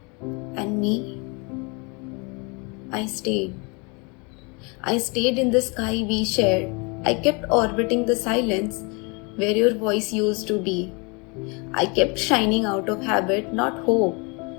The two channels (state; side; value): quieter; right; 30.9 dB